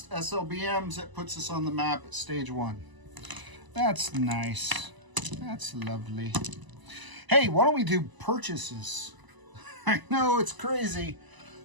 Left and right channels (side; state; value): left; late; 1.0 ms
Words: SLBMs. That puts us on the map at stage 1. That's nice. That's lovely. Hey, why don't we do purchases? I know it's crazy,